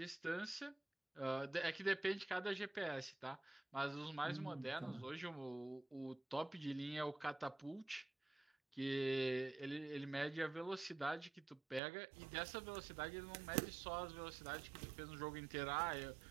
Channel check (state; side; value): drops out; left; at 11.8 s